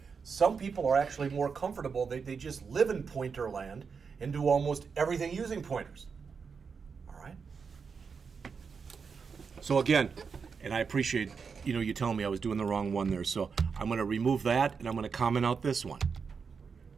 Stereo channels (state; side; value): quieter; left; 5.7 dB